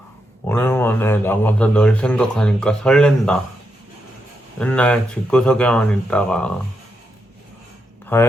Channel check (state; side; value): normal; both; correlation 0.83